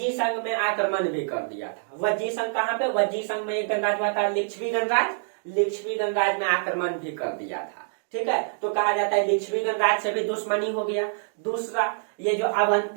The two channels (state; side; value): silent; left; digital silence